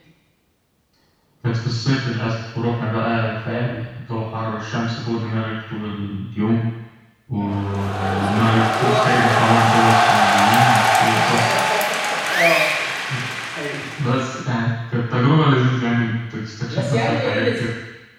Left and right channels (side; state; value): both; identical; correlation 1.00